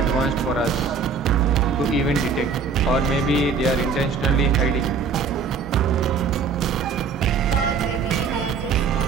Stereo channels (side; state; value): left; quieter; 5.3 dB